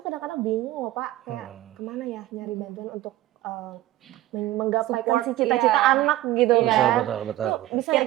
kadang-kadang bingung loh Pak, kayak kemana ya nyari bantuan untuk menggapaikan Support, si cita-cita iya. anak gitu Betul, kan. betul. Bisa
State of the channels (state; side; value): quieter; left; 15.3 dB